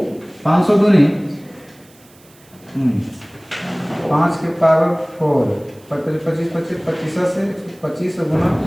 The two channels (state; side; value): noise; right; hiss, 28 dB below the sound